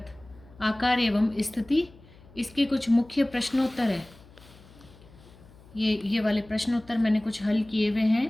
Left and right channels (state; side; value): noise; left; hum, 24 dB below the sound